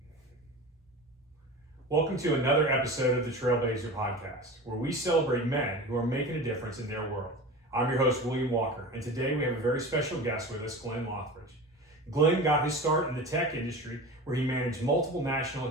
Welcome to another episode of the Trailblazer Podcast, where we celebrate men who are making a difference in their world. I'm your host, William Walker, and today we have a very special guest with us, Glenn Loighridge. Glenn got his start in the tech industry where he managed multiple national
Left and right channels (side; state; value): both; normal; correlation 0.32